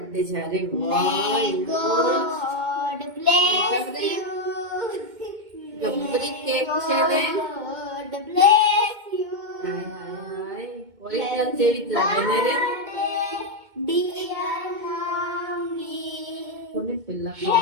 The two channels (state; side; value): late; left; 2.2 ms